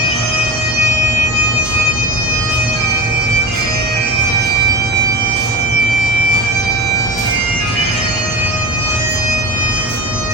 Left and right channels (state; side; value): normal; both; correlation 0.29